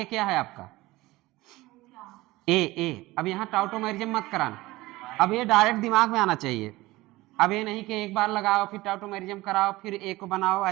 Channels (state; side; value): quieter; left; 19.3 dB